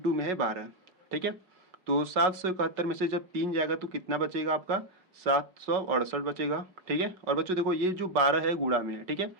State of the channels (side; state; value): left; late; 5.4 ms